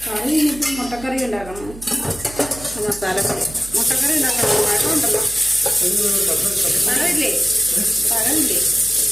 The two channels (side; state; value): right; noise; hum, 16 dB below the sound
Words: കറി ഇനിയിപ്പം മുട്ടക്കറി ഉണ്ടാക്കണം. മസാലക്കറി മുട്ടക്കറി ഉണ്ടാക്കണം. പഴമുണ്ടല്ലോ, പഴമില്ലേ?